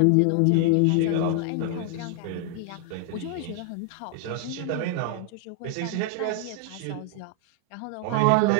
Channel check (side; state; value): both; different; correlation 0.00